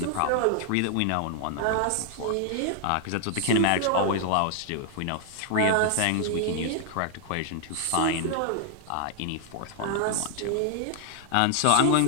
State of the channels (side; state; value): both; different; correlation 0.00